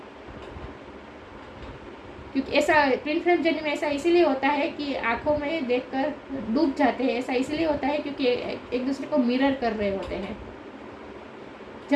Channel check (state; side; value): identical; both; correlation 1.00